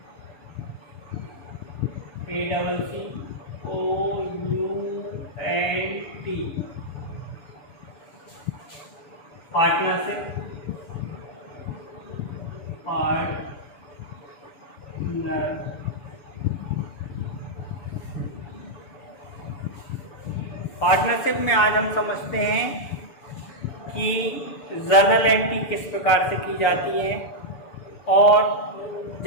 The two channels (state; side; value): late; right; 6.9 ms